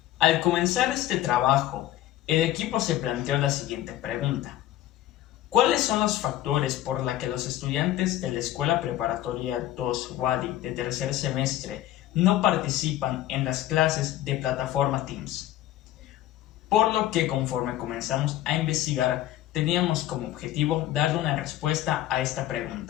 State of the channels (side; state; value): right; quieter; 13.8 dB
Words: Al comenzar este trabajo, el equipo se planteó la siguiente pregunta. ¿Cuáles son los factores por los que los estudiantes de la Escuela Preparatoria 2 Wadi de tercer semestre no participan en las clases de plataforma Teams? Por lo que conforme comenzamos a investigar, teníamos como objetivo darle una respuesta a esta